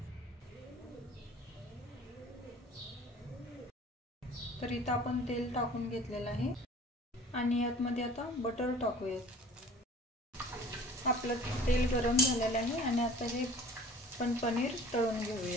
तर इथं आपण तेल टाकून घेतलेलं आहे आणि यामध्ये आता बटर टाकूया। आपलं तेल गरम झालेलं आहे आणि आता हे पण पनीर तळून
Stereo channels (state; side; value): normal; both; correlation 0.48